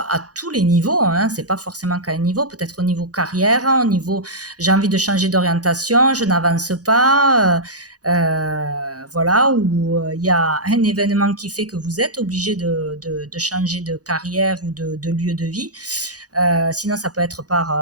tous les niveaux, hein, c'est pas forcément qu'à un niveau, peut-être au niveau carrière, au niveau j'ai envie de changer d'orientation, je n'avance pas, voilà, ou il y a un événement qui fait que vous êtes obligé de changer de carrière ou de lieu de vie. Sinon, ça peut être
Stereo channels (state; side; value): late; left; 0.67 ms